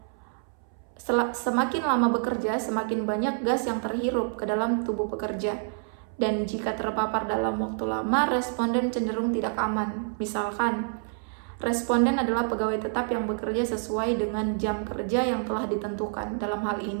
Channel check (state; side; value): silent; left; 60 dB below the other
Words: Semakin lama bekerja, semakin banyak gas yang terhirup ke dalam tubuh pekerja. Dan jika terpapar dalam waktu lama, responden cenderung tidak aman. Misalkan, responden adalah pegawai tetap yang bekerja sesuai dengan jam kerja yang telah ditentukan. Dalam hal